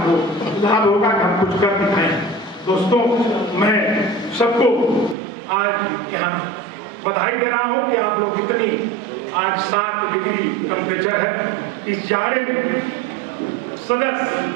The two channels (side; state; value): left; drops out; at 5.2 s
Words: लाभ होगा कि हम कुछ कर दिखाएं। दोस्तों, मैं सबको आज यहाँ बधाई दे रहा हूँ कि आप लोग इतनी, आज 7 डिग्री टेम्परेचर है, इस जाड़े में